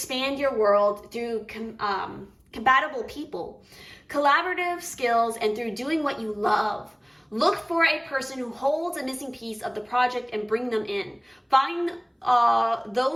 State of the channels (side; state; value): both; identical; correlation 1.00